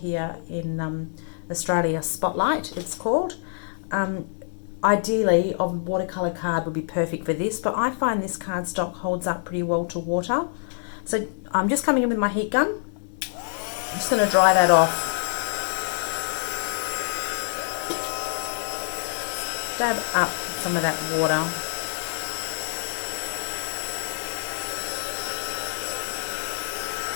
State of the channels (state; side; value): silent; right; digital silence